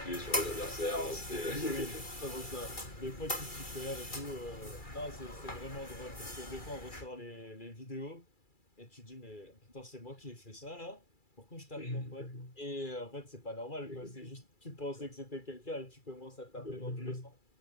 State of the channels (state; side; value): late; right; 2.3 ms